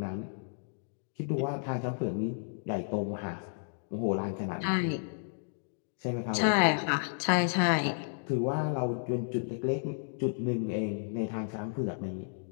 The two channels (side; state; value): right; silent; digital silence